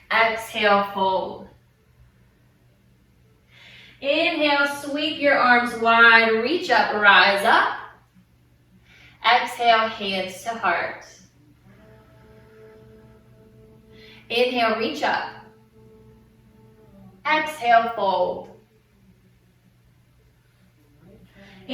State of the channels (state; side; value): identical; both; correlation 1.00